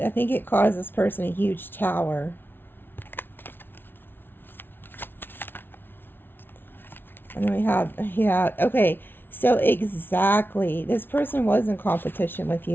think it caused this person a huge tower. And then we have, yeah, okay. So exactly, this person was in competition with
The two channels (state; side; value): late; right; 0.10 ms